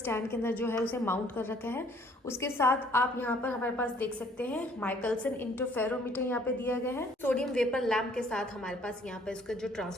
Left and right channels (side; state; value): both; normal; correlation 0.59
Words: के अंदर जो है उसे माउंट कर रखा है। उसके साथ आप यहाँ पर हमारे पास देख सकते हैं माइकलसन इंटरफेरोमीटर यहाँ पे दिया गया है। सोडियम वेपर लैंप के साथ हमारे पास यहाँ पर इसका जो